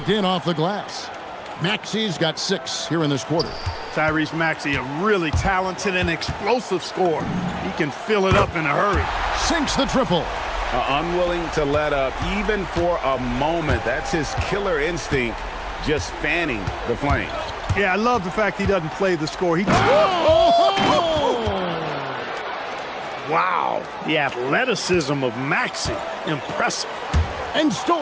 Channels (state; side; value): identical; both; correlation 1.00